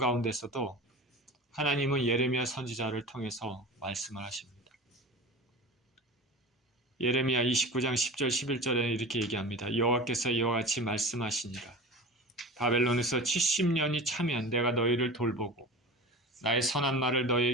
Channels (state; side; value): normal; both; correlation 0.33